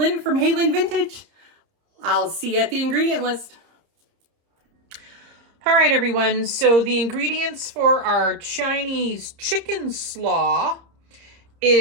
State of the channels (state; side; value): late; left; 30 ms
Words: from Hey Lynn Vintage. I'll see you at the ingredient list. All right, everyone. So the ingredients for our Chinese chicken slaw